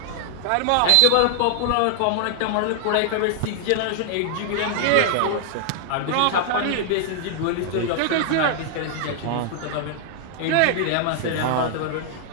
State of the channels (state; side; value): different; both; correlation 0.00